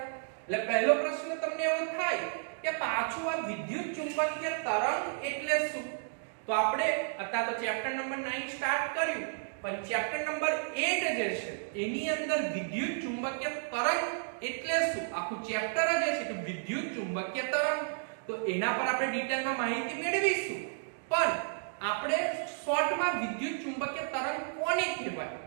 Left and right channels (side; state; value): left; silent; digital silence